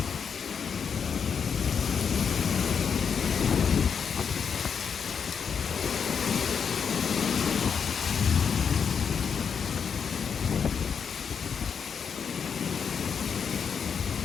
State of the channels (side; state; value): right; quieter; 6.6 dB